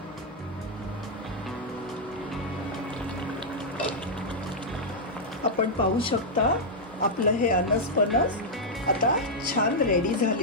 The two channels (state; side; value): normal; both; correlation -0.05